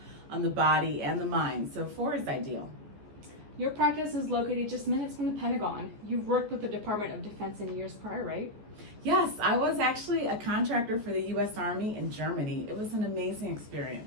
on the body and the mind, so 4 is ideal. Your practice is located just minutes from the Pentagon. You've worked with the Department of Defense in years prior, right? Yes, I was actually a contractor for the U.S. Army in Germany. It was an amazing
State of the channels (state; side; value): late; left; 14 ms